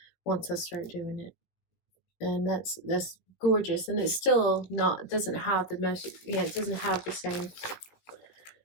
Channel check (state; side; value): late; right; 18 ms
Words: once I start doing it. And that's gorgeous. And it's still not, doesn't have the most, it doesn't have the same,